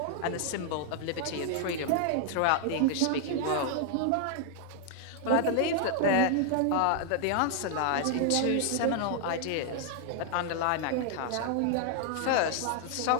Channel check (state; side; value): different; both; correlation 0.00